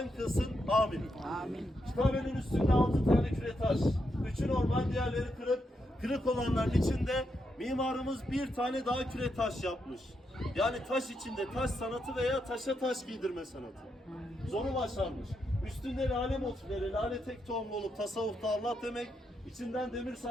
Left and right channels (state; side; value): normal; both; correlation 0.82